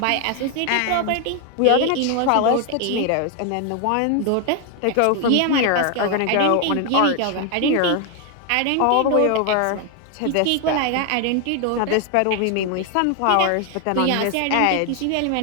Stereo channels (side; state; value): both; different; correlation 0.01